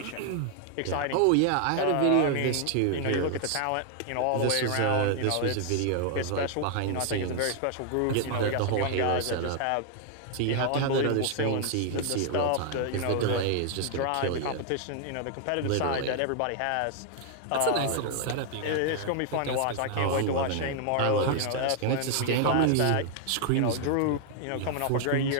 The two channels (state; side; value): different; both; correlation 0.00